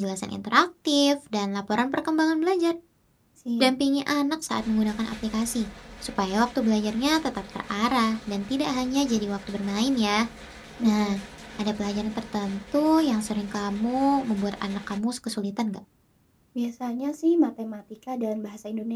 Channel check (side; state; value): both; identical; correlation 1.00